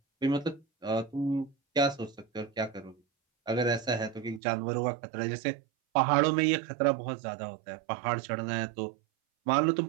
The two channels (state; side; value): drops out; left; at 4.4 s